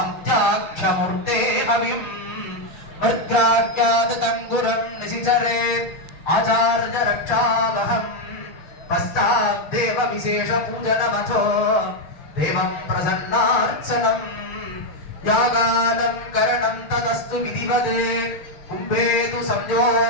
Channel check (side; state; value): right; late; 6.7 ms